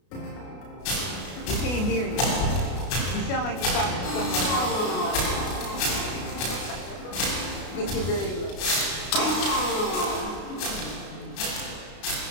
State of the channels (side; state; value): right; late; 33 ms